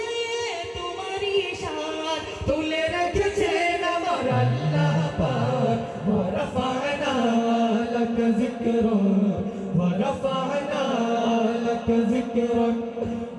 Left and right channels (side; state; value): both; identical; correlation 1.00